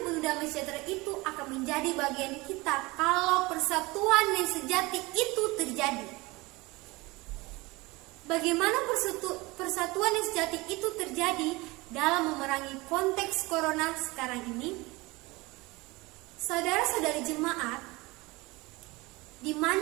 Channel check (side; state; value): left; quieter; 23.1 dB